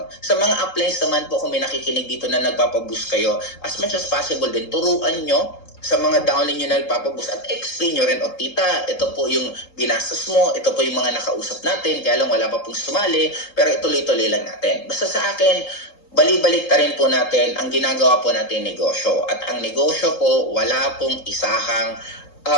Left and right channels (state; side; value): late; right; 3.8 ms